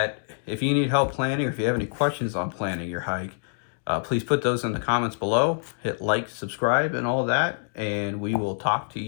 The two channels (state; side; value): silent; right; digital silence